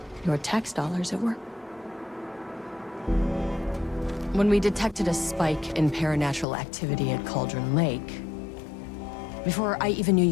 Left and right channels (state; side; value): drops out; right; at 6.5 s